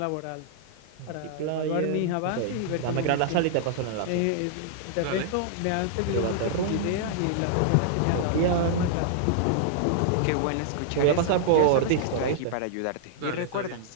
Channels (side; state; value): both; different; correlation -0.01